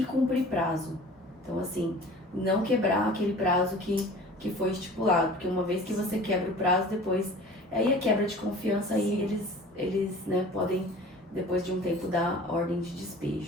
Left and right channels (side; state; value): both; normal; correlation 0.43